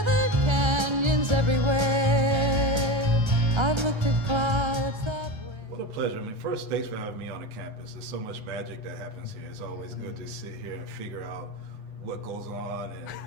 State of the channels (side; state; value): left; late; 1.3 ms